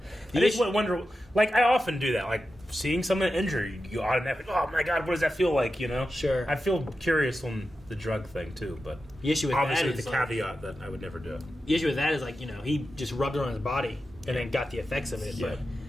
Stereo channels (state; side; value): normal; both; correlation 0.91